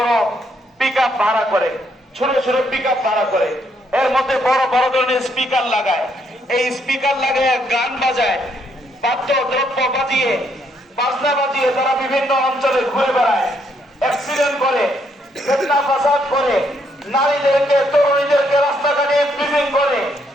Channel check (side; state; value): both; normal; correlation 0.73